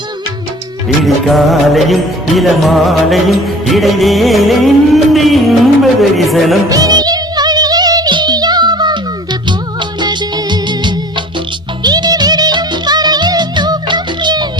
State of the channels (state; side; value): normal; both; correlation 0.46